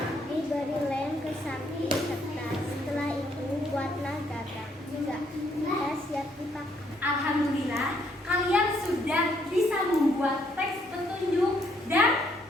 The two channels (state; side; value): normal; both; correlation 0.70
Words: Diberi lem ke samping kertas. Setelah itu buatlah gagang. 3. Sudah siap dipakai. Alhamdulillah, kalian sudah bisa membuat teks petunjuk dan